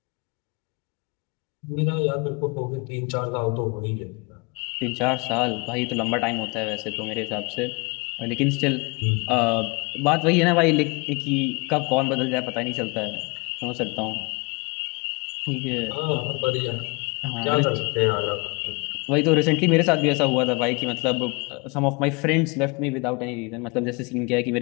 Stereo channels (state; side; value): quieter; right; 29.3 dB